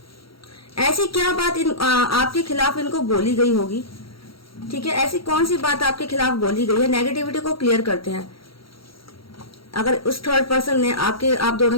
ऐसी क्या बात आपके खिलाफ इनको बोली गई होगी, ठीक है। ऐसी कौन सी बात आपके खिलाफ बोली गई है, नेगेटिविटी को क्लियर करते हैं। अगर उस थर्ड पर्सन ने आप दोनों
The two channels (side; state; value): right; late; 0.75 ms